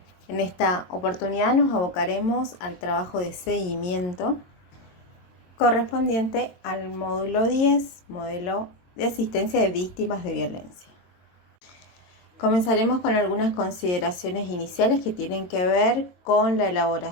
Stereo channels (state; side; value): late; right; 22 ms